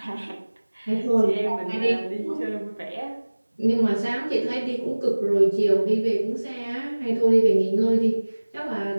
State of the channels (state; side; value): inverted; both; correlation -1.00